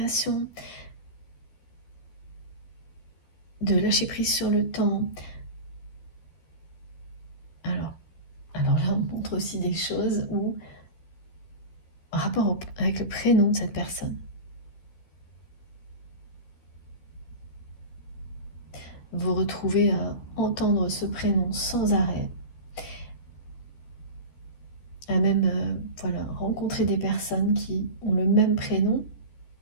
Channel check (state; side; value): late; right; 13 ms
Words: de lâcher prise sur le temps. Alors là, on montre aussi des choses où, en rapport avec le prénom de cette personne, vous retrouvez à entendre ce prénom sans arrêt, à même voilà, rencontrer des personnes qui ont le même prénom,